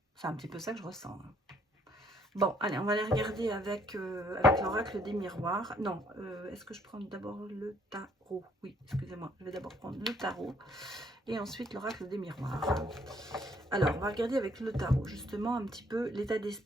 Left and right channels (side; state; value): both; normal; correlation 0.66